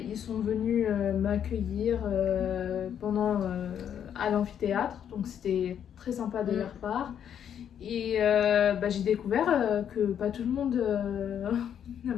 Ils sont venus m'accueillir à l'amphithéâtre. Donc c'était très sympa de leur part. Et j'ai découvert que pas tout le monde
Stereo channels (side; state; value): right; quieter; 9.0 dB